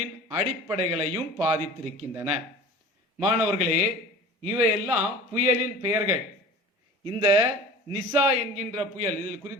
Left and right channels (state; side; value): normal; both; correlation 0.40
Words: அடிப்படைகளையும் பாதித்திருக்கின்றன. மாணவர்களே, இவையெல்லாம் புயலின் பெயர்கள். இந்த நிசா என்கின்ற புயல், இதில்